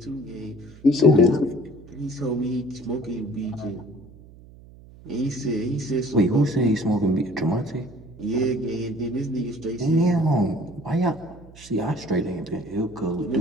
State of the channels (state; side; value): noise; right; hum, 21 dB below the sound